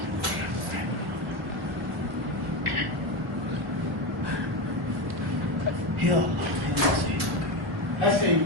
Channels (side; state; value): left; late; 1.1 ms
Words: يا الله. هسه يجي